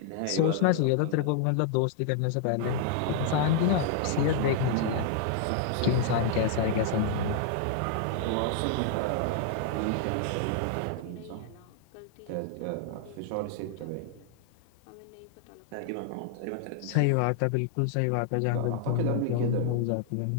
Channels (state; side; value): different; both; correlation -0.01